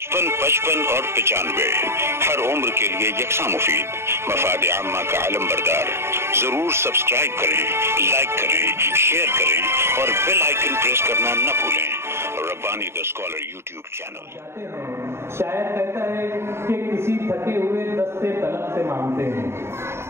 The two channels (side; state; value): left; late; 0.12 ms